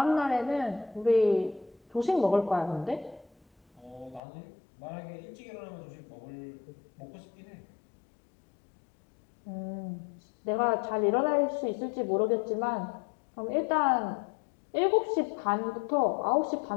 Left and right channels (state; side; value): drops out; right; at 4.2 s